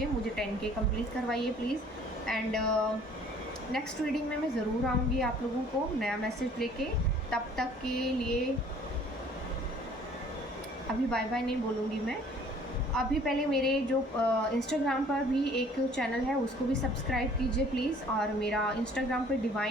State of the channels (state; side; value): normal; both; correlation 0.55